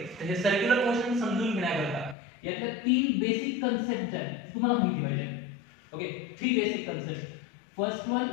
तर हे सर्क्युलर मोशन समजून घेण्याकरता यातल्या 3 बेसिक कन्सेप्ट आहेत तुम्हाला माहिती पाहिजे. Okay, 3 basic concept. First one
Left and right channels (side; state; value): right; drops out; at 2.1 s